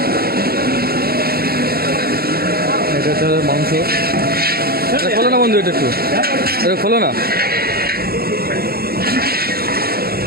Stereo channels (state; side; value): late; left; 0.45 ms